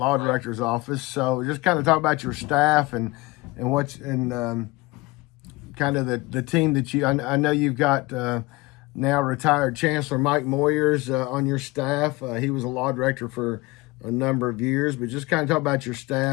director's office. So just kind of talk about your staff and kind of the team that I know you've got now retired Chancellor Mike Moyers on your staff. He was a law director for a number of years, but just kind of talk about your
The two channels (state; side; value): quieter; right; 22.5 dB